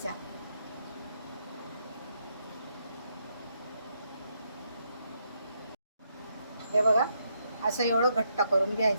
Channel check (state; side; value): inverted; both; correlation -0.77